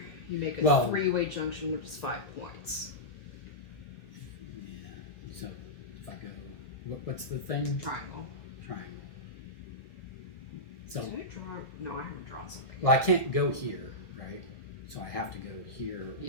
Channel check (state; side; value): late; right; 1.6 ms